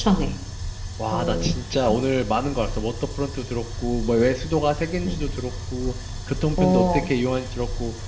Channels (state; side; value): identical; both; correlation 1.00